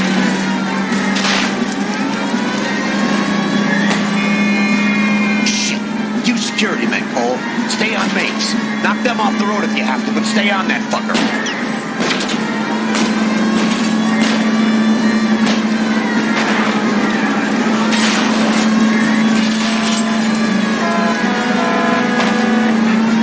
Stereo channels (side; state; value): both; identical; correlation 1.00